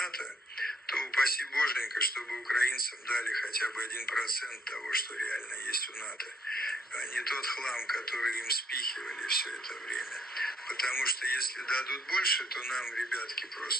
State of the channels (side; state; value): both; normal; correlation 0.62